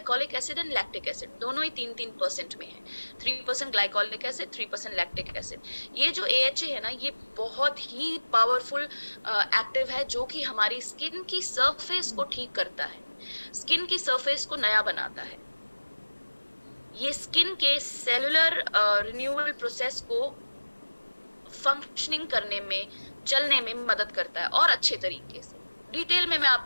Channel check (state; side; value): inverted; both; correlation -1.00